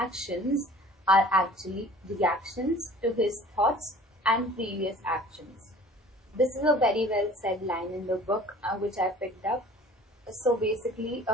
are actually reactions to his thoughts and previous actions. This is a very well said line in the book which I picked up. So basically,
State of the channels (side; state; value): both; normal; correlation 0.47